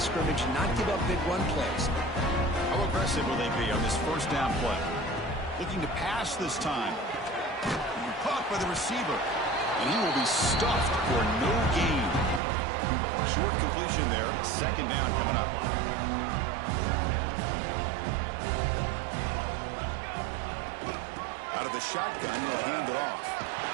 and not give up big run plays. How aggressive will they be on this first down play? Looking to pass this time. Caught by the receiver. And he will be stuffed for no gain. Short completion there. Second down coming up. Out of the shotgun, he'll hand it off.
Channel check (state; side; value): drops out; left; at 12.4 s